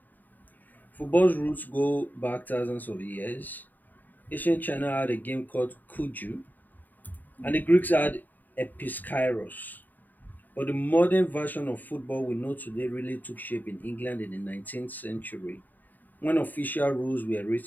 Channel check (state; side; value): late; right; 0.087 ms